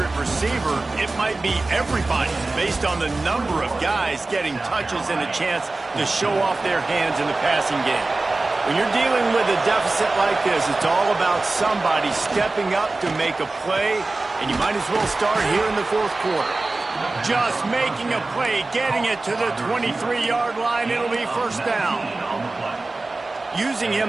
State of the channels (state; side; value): quieter; left; 3.3 dB